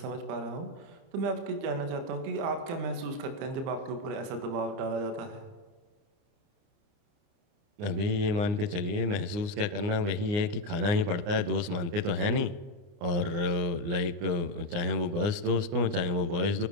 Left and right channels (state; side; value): late; left; 29 ms